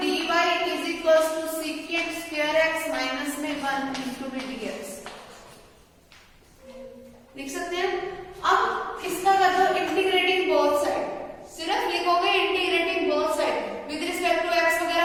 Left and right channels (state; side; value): identical; both; correlation 1.00